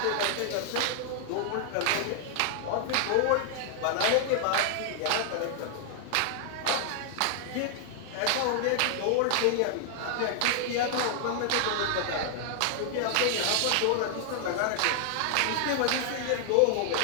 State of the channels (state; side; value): different; both; correlation 0.00